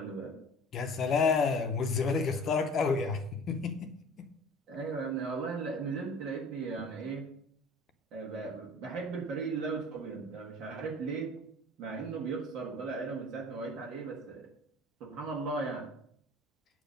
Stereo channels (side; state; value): both; normal; correlation 0.44